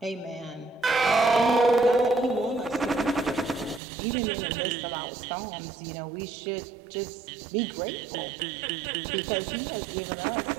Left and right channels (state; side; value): drops out; left; at 3.8 s